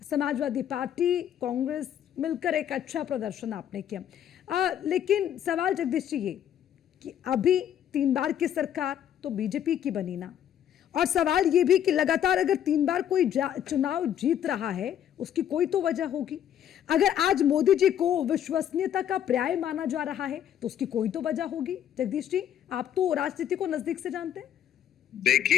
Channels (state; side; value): quieter; right; 10.1 dB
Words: समाजवादी पार्टी कांग्रेस मिलकर एक अच्छा प्रदर्शन आपने किया। लेकिन सवाल जगदीश जी ये कि अभी 3 बार की सरकार तो बीजेपी की बनी ना, और सवाल ये भी कि लगातार अगर 3 बार कोई चुनाव जीत रहा है उसकी कोई तो वजह होगी। अगर आज मोदी जी को विश्वसनीयता का पर्याय माना जा रहा है तो उसकी कोई तो वजह होगी। जगदीश जी, आप तो राजनीति को नजदीक से जानते हैं।